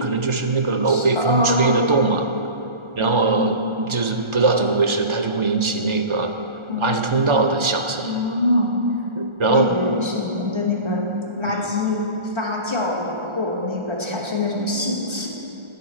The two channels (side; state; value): left; late; 1.4 ms